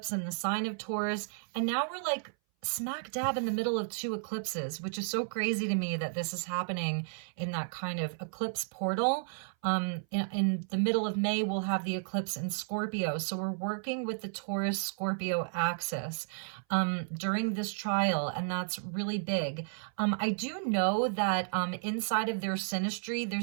in the sign of Taurus. And now we're like smack dab in the middle of 2 eclipses, which is so crazy to me that this is happening in that kind of eclipse portal. In the middle of May, we'll have the eclipse in Scorpio. So we're working with the Taurus-Scorpio axis during this trial, and that's really big. I do know that inside of their synastry,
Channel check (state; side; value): silent; left; 56 dB below the other